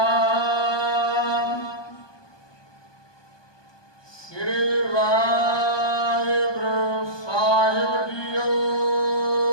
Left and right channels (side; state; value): right; late; 1.2 ms